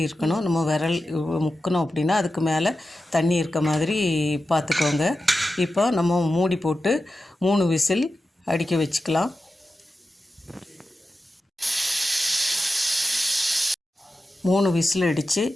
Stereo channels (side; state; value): both; normal; correlation 0.92